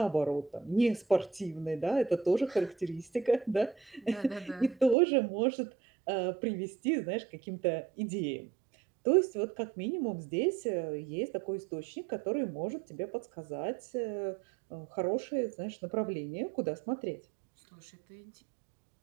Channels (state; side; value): drops out; left; at 5.0 s